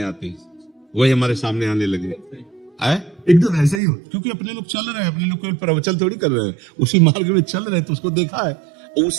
आती है, वही हमारे सामने आने लगे। एकदम ऐसा ही हो, क्योंकि अपने लोग चल रहे हैं, अपने लोग कोई प्रवचन थोड़ी कर रहे हैं, उसी मार्ग में चल रहे हैं, तो उसको देखा है।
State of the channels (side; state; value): left; drops out; at 3.8 s